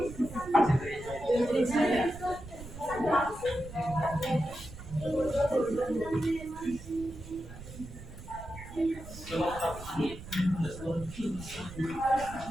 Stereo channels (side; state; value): right; noise; rumble, 13 dB below the sound